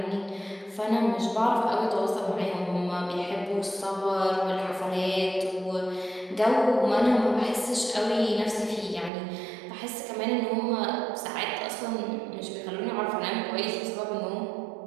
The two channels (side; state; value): left; drops out; at 9.1 s